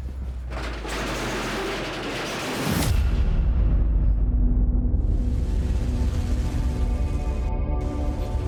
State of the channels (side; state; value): both; identical; correlation 1.00